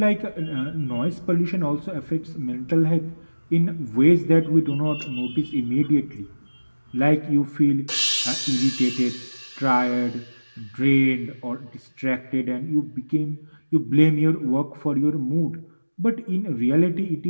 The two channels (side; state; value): both; inverted; correlation -1.00